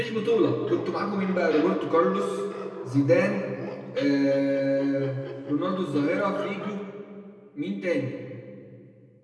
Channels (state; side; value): identical; both; correlation 1.00